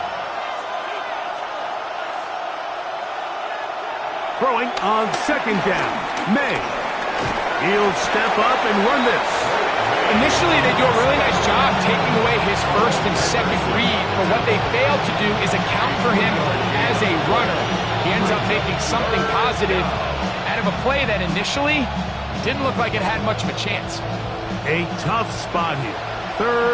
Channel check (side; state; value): both; identical; correlation 1.00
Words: Throwing on second down. May. He'll step up and run this. Initially, they do a really nice job taking away his first and second read, but what they fail to do is account for him as a runner. He ends up making something positive out of a play that initially didn't look like it had much of a chance. A tough spot here.